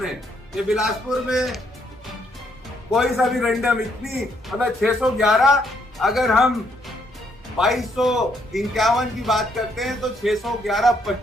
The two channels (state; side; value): normal; both; correlation 0.72